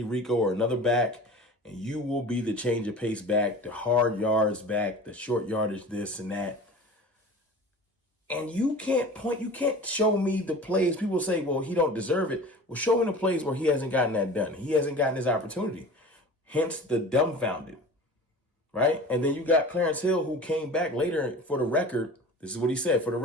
Rico or another back, and you will be the change of pace back, the hard yards back, the short yardage this and that. And you can't show me the plays. People say, well, he don't deserve it. Well, show me the plays where he hasn't gotten that done. He hasn't gotten his opportunity. Hence the dumbfounded, right? And then you got Clarence Hill, who came back later for the record. This is what he said, for the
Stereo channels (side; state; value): both; normal; correlation 0.38